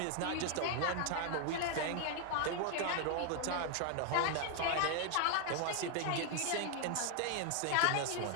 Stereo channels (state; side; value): different; both; correlation 0.00